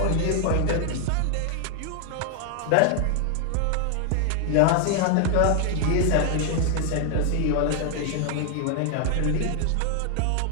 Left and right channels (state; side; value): different; both; correlation 0.00